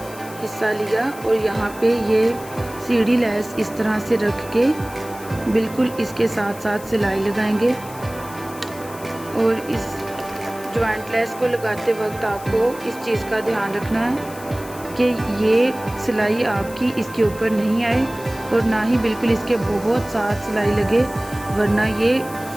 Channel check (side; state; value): left; noise; hiss, 18 dB below the sound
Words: हिस्सा लिया और यहाँ पे ये सीढ़ी लेस इस तरह से रख के बिल्कुल इसके साथ साथ सिलाई लगाएंगे। और इस जॉइंट लेस को लगाते वक्त आपको इस चीज़ का ध्यान रखना है कि ये सिलाई आपकी इसके ऊपर नहीं आए और ना ही बिल्कुल इसके बहुत साथ सिलाई लगे, वरना ये